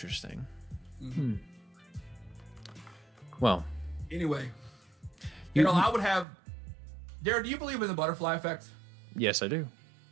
Mm-hmm. Well. Anyway, I would have. Darren, do you believe in the butterfly effect? Yes, I do.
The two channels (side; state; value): left; drops out; at 6.2 s